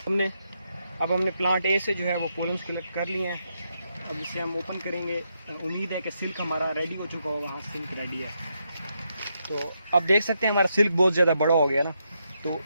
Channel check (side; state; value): both; inverted; correlation -0.81